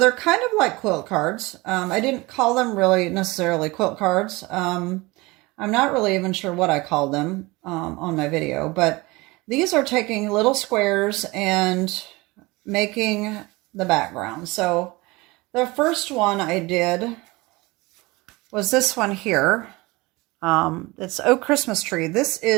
kind of like quilt cards. I didn't call them really necessarily quilt cards. I'm not really even sure what I called them on my video, but these are taking little squares and making the background. So the first one I did was this one here. It's Oh Christmas Tree. This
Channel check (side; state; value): left; quieter; 22.9 dB